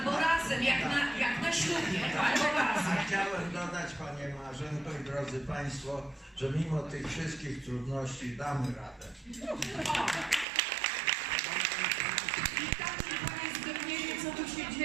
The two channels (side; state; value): left; drops out; at 10.5 s